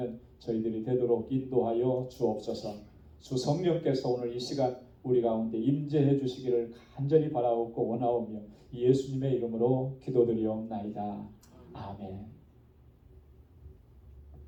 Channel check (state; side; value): identical; both; correlation 1.00